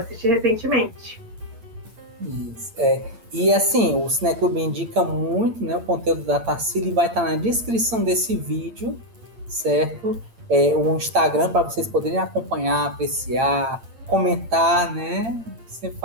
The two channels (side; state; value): left; late; 8.8 ms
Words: recentemente. Isso, E assim, o Cineclube indica muito, né, o conteúdo da Tarsila e vai estar na descrição desse vídeo, certo? O Instagram para vocês poderem acompanhar, apreciar, comentar, né? Sempre